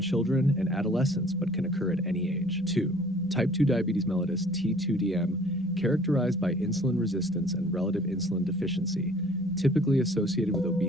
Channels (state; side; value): normal; both; correlation 0.53